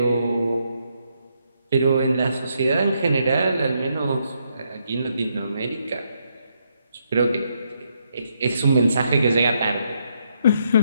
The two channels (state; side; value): inverted; both; correlation -0.77